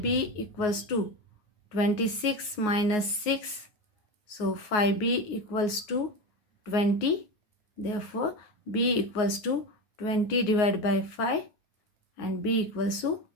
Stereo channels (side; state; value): right; late; 9.5 ms